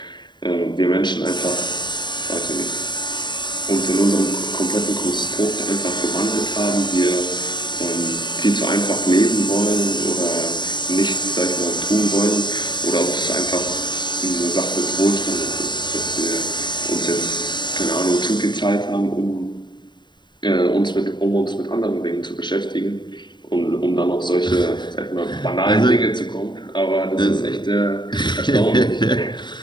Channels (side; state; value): right; late; 0.22 ms